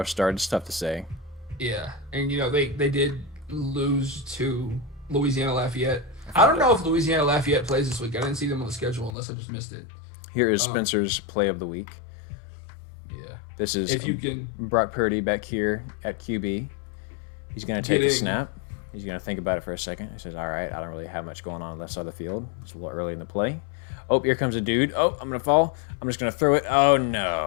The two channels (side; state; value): right; drops out; at 9.2 s